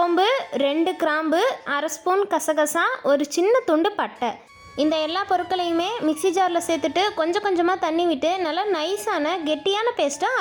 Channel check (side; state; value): both; identical; correlation 1.00